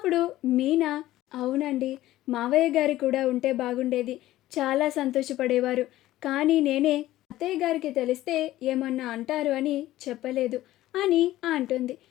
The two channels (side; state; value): right; quieter; 15.3 dB